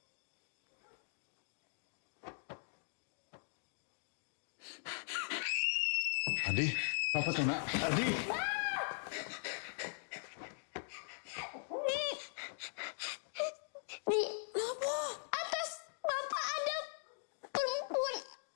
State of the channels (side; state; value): right; silent; digital silence